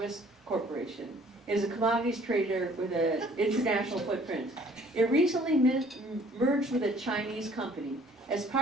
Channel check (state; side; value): normal; both; correlation 0.56